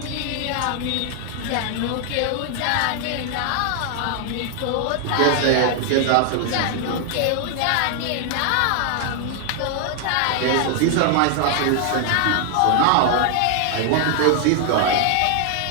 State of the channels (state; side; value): different; both; correlation 0.00